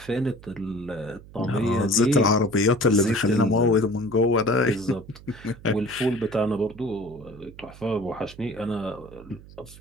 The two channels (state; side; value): noise; right; hum, 19 dB below the sound